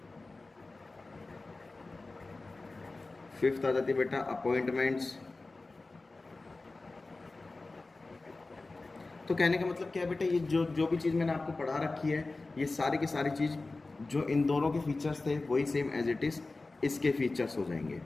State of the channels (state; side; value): quieter; right; 3.4 dB